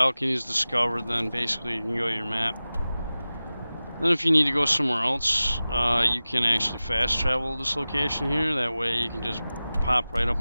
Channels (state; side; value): inverted; both; correlation -0.96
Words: discovered, then basically you can go to your map. Then if you need to go somewhere else, you can actually fast travel to this location here. That way you can just pop right